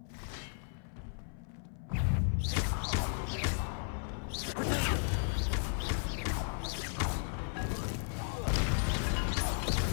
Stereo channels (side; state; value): right; silent; 54 dB below the other